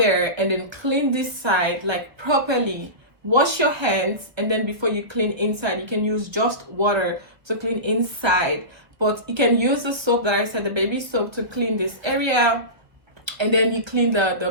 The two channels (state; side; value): late; left; 1.0 ms